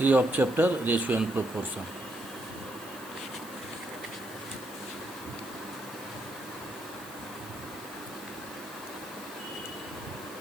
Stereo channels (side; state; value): right; noise; hiss, 16 dB below the sound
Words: of chapter Ratio and Proportion.